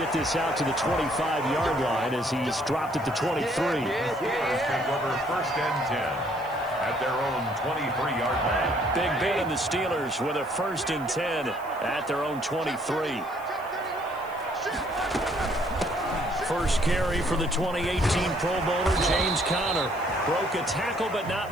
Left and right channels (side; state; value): left; noise; hiss, 24 dB below the sound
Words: this out to the 25-yard line as he's dropped at the 23. Steelers take over 1st and 10 at their own 23-yard line. Big Ben and the Steelers with a 1st and 10 at their own 23. First carry for the 2018 Pro Bowler, James Conner. Broke a tackle, but not